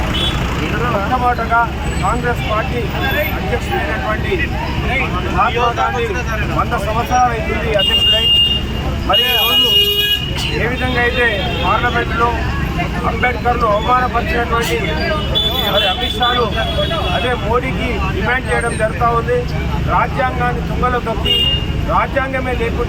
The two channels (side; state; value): both; identical; correlation 1.00